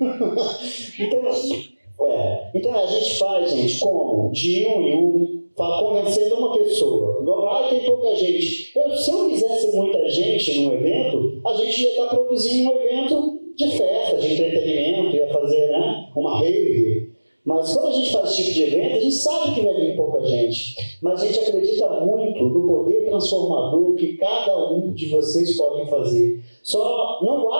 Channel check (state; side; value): inverted; both; correlation -1.00